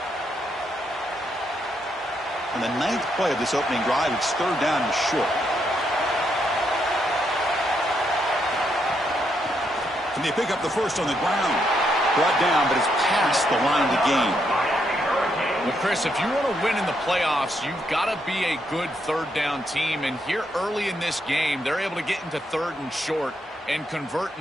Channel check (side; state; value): both; normal; correlation 0.78